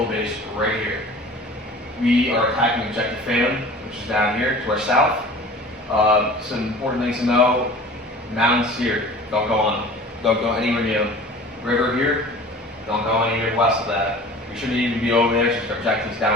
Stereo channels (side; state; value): both; normal; correlation 0.42